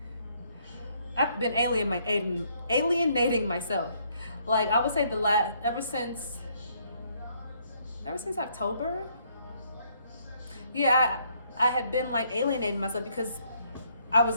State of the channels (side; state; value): both; inverted; correlation -0.69